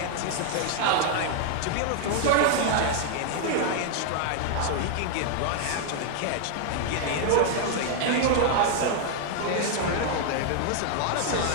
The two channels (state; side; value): different; both; correlation 0.00